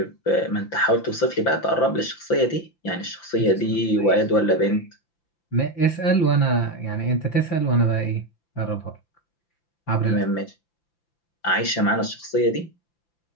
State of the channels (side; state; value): right; late; 5.9 ms